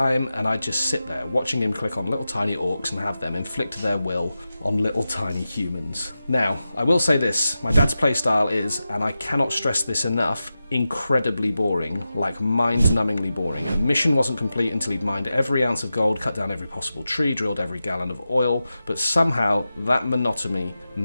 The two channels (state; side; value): inverted; both; correlation -0.92